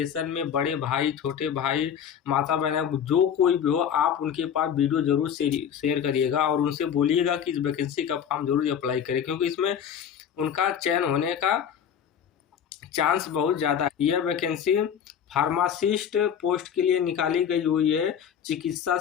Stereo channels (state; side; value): quieter; right; 8.4 dB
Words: में बड़े भाई, छोटे भाई, माता बहन, जो कोई भी हो, आप उनके पास वीडियो जरूर शेयर करिएगा और उनसे बोलिएगा कि इस वैकेंसी का फॉर्म जरूर अप्लाई करें, क्योंकि इसमें उनका चयन होने का चांस बहुत ज़्यादा है। यह वैकेंसी फार्मासिस्ट पोस्ट के लिए निकाली गई हुई है चिकित्सा